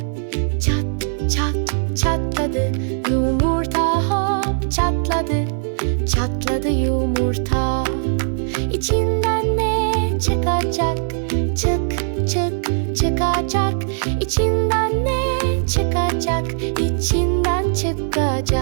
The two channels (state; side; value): silent; left; 66 dB below the other